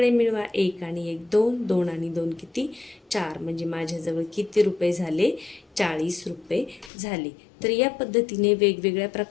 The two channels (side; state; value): right; drops out; at 6.9 s